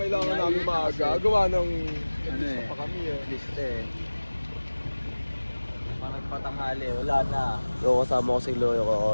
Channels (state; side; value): inverted; both; correlation -1.00